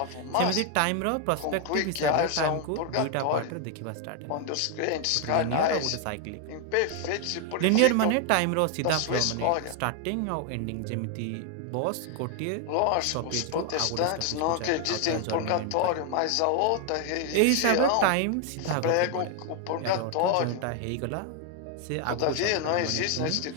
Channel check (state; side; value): different; both; correlation 0.00